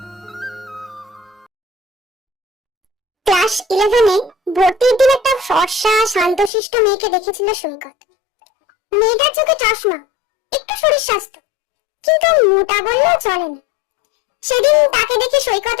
ক্লাস 11-এ ভর্তির দিন একটা ফর্সা শান্তশিষ্ট মেয়েকে দেখেছিল সৈকত। মেয়েটার চোখে চশমা, একটু শরীর স্বাস্থ্য, কিন্তু মোটা বললেও চলে না। সেদিন তাকে দেখে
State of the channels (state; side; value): drops out; right; at 6.5 s